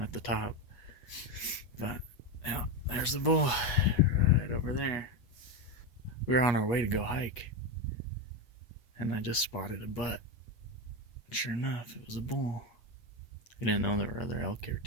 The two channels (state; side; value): late; right; 8.4 ms